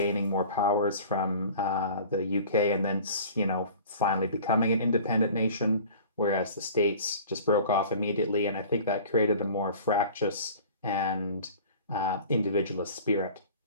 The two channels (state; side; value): inverted; both; correlation -0.43